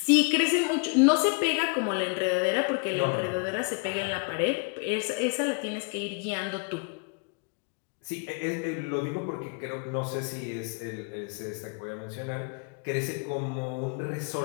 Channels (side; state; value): right; quieter; 35.4 dB